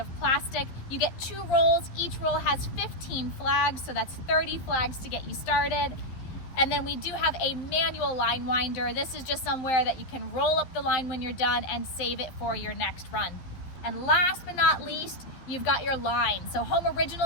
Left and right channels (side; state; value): right; late; 12 ms